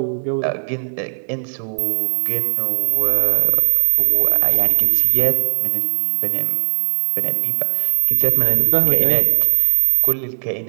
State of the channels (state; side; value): silent; left; digital silence